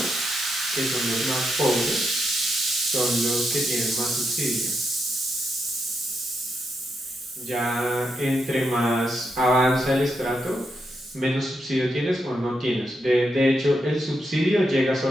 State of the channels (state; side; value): normal; both; correlation 0.82